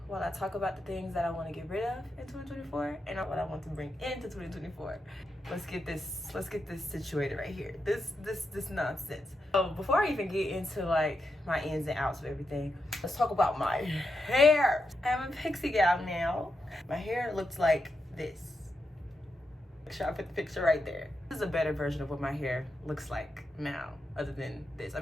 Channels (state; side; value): normal; both; correlation 0.85